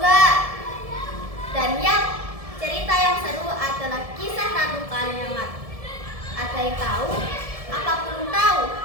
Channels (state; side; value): late; left; 1.7 ms